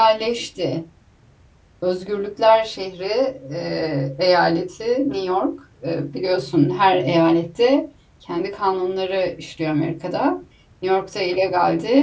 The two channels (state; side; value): identical; both; correlation 1.00